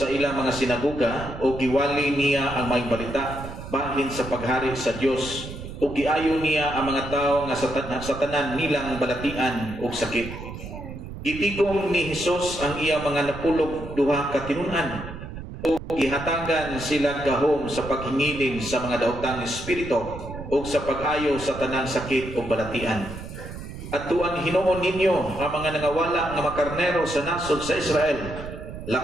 ilang mga sinagoga o giwali niya ang may balita bahin sa paghari sa Dios o giayo niya ang mga tao nga sa tanan nilang balatian o sakit. Gitigom ni Hesus ang iya mga napulog duha ka tinun-an o gihatagan sila gahom sa paghingiling sa mga daotang espiritu o sa pag-ayo sa tanang sakit o balatian. At tuan hinuon ninyo ang mga nangawala nga makarnero sa nasod sa Israel.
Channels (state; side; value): noise; right; rumble, 10 dB below the sound